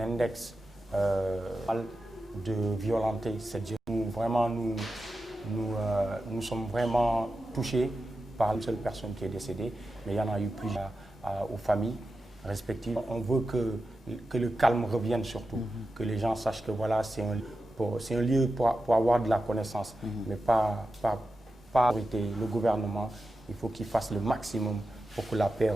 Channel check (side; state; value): both; normal; correlation 0.91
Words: de violenter cette jeunesse. Vraiment, nous sommes vraiment touchés par une seule personne qui est décédée, mais il y en a eu plusieurs aux familles respectives. On veut que le calme revienne surtout, que les gens sachent que voilà, c'est un lieu pour avoir de la connaissance, mais pas le gouvernement. Il faut qu'il fasse le maximum pour que la paix